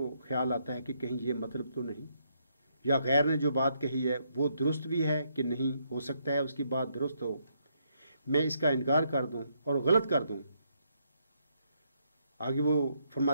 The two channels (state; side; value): inverted; both; correlation -0.75